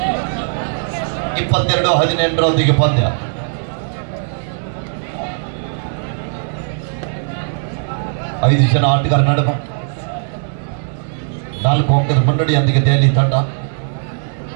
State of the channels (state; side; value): silent; left; 67 dB below the other